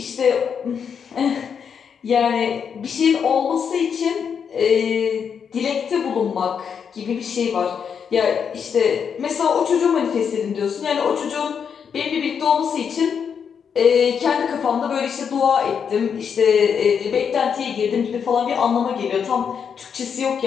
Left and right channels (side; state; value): right; quieter; 7.0 dB